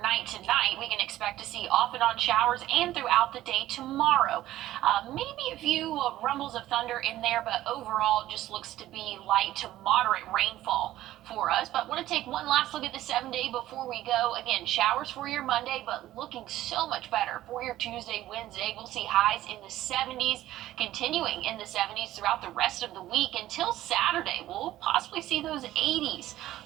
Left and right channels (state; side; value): quieter; left; 14.4 dB